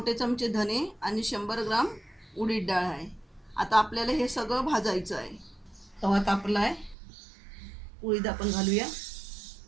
चमचे धने आणि 100 ग्राम उडीद डाळ आहे. आता आपल्याला हे सगळं भाजायचं आहे. तवा तापला आहे, उडीद आपण घालूया.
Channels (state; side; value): drops out; left; at 7.0 s